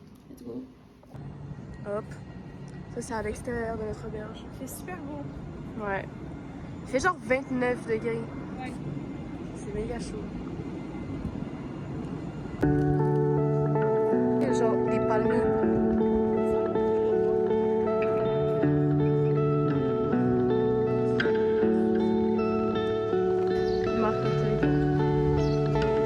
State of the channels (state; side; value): identical; both; correlation 1.00